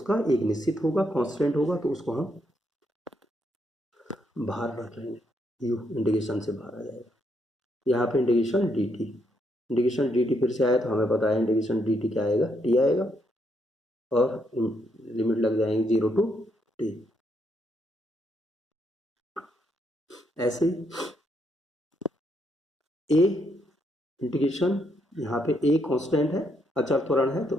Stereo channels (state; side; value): normal; both; correlation 0.76